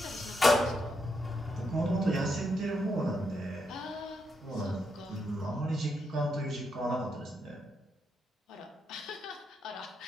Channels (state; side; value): normal; both; correlation 0.81